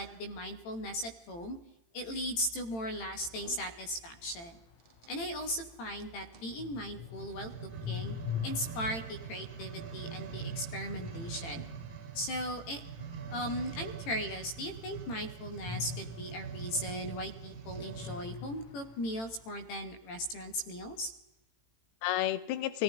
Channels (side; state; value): right; late; 18 ms